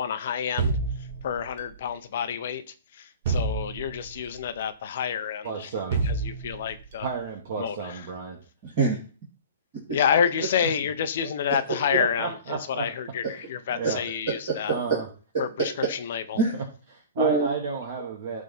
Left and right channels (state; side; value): inverted; both; correlation -0.41